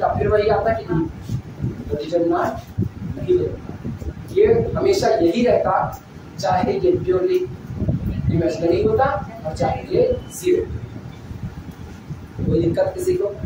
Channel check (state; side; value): identical; both; correlation 1.00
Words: फिर वही आता कि नहीं? तो डिटरमिनेंट नहीं होता। ये हमेशा यही रहता, चाहे ये प्योरली इमेजिनरी होता और चाहे ये 0। कोई दिक्कत किसी को?